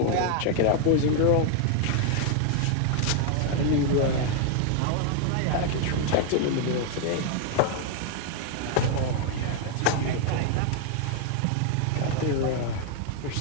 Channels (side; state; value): both; different; correlation 0.00